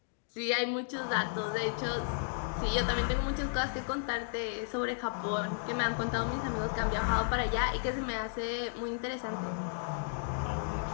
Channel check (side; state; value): right; silent; digital silence